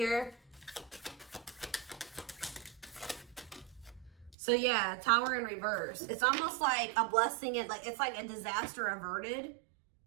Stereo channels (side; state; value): left; drops out; at 4.4 s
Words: So yeah, Tower in reverse. It's almost like a blessing. It's like a disaster averted.